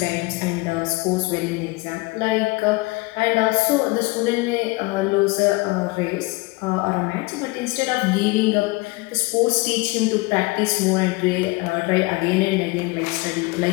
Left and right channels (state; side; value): quieter; right; 24.1 dB